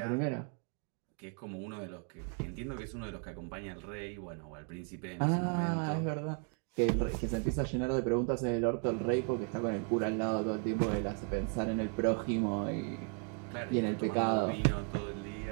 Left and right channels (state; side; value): quieter; left; 38.9 dB